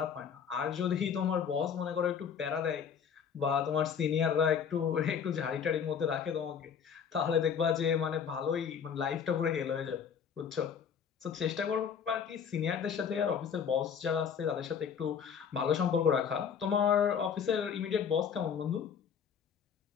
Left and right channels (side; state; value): right; quieter; 7.2 dB